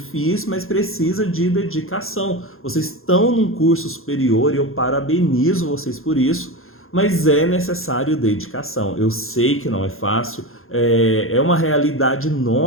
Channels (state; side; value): late; right; 0.61 ms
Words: mas precisa de dedicação. Vocês estão num curso superior e eu parabenizo vocês por isso, mas é necessário dedicação. Eu sei que não é fácil, é uma realidade